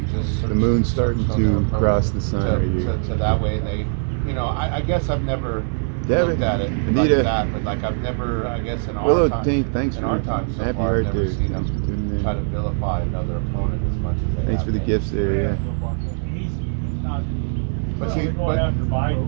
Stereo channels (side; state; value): left; silent; digital silence